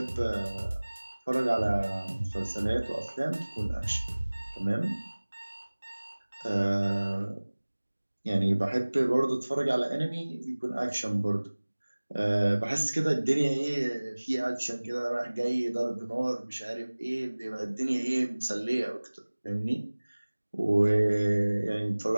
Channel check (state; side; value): inverted; both; correlation -1.00